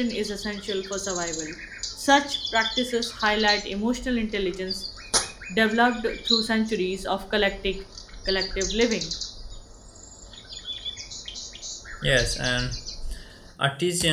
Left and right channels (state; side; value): identical; both; correlation 1.00